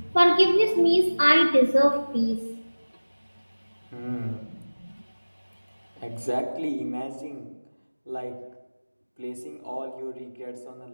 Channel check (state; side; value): inverted; both; correlation -1.00